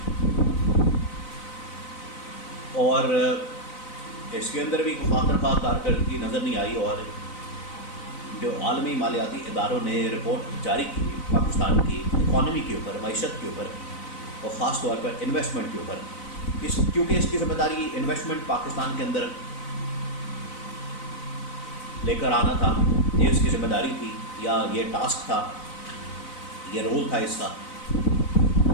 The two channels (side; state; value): right; late; 4.0 ms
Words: اور اس کے اندر بھی خاطر خواہ کارکردگی نظر نہیں آئی، اور جو عالمی مالیاتی اداروں نے رپورٹ جاری کی پاکستان کی اکانومی کے اوپر، معیشت کے اوپر، اور خاص طور پر انویسٹمنٹ کے اوپر، کیونکہ اس کی ذمہ داری انویسٹمنٹ پاکستان کے اندر لے کر آنا تھا، یہ اس کی ذمہ داری تھی، یا یہ ٹاسک تھا، یہ رول تھا اس کا.